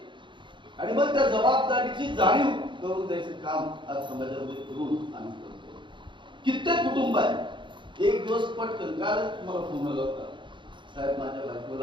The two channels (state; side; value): late; left; 0.23 ms